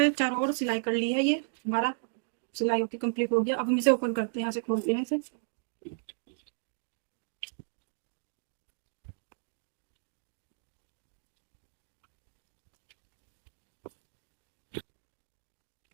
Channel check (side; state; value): left; silent; digital silence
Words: चारों ओर सिलाई कर ली है। ये हमारा सिलाई होके कंप्लीट हो गया। अब हम इसे ओपन करते हैं, यहाँ से खोलते हैं इसे।